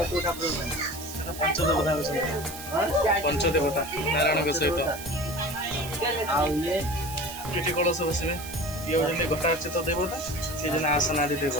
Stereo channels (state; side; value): noise; right; hiss, 12 dB below the sound